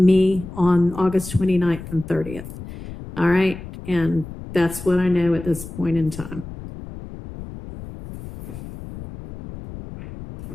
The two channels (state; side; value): noise; left; rumble, 12 dB below the sound